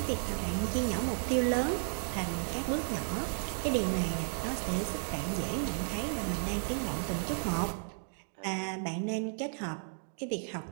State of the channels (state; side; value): silent; left; 55 dB below the other